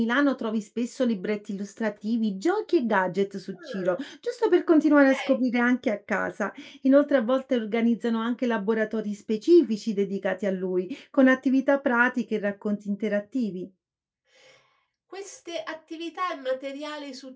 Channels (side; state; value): both; identical; correlation 1.00